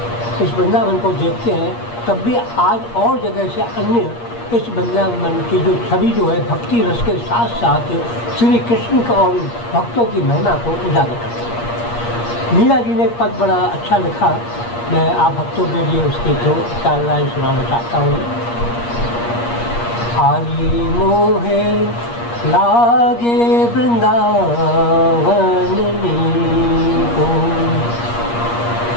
इस वृंदावन को देखते हैं, तब भी आज और जगह से अन्य इस वृंदावन की जो छवि जो है भक्ति रस के साथ साथ श्री कृष्ण का और भक्तों की महिमा को उजागर करती है। मीरा जी ने एक पद बड़ा अच्छा लिखा, मैं आप भक्तों के लिए उसके 2-4 लाइन सुनाना चाहता हूँ। आली मोहे लागे वृंदावन नीको,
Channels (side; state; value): right; late; 8.5 ms